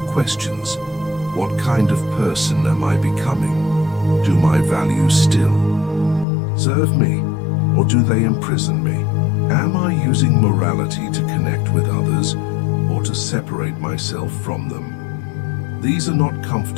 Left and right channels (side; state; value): right; drops out; at 6.2 s